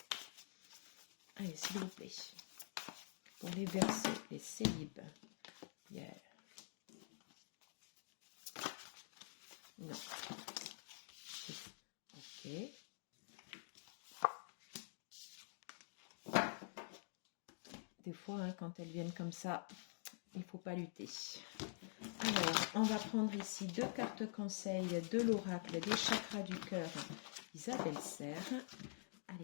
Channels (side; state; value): right; silent; digital silence